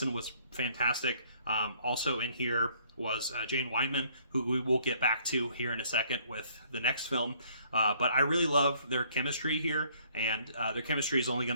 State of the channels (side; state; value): both; inverted; correlation -0.62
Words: was fantastic. Also in here was Jane Wyman, who we will get back to here in a second with the next film. But I really love their chemistry here, and their chemistry is only going